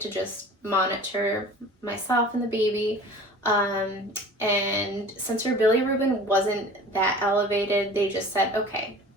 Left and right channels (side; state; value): both; normal; correlation 0.42